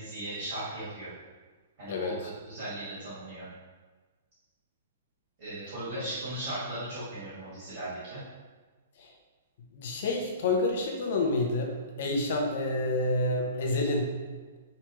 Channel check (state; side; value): inverted; both; correlation -0.38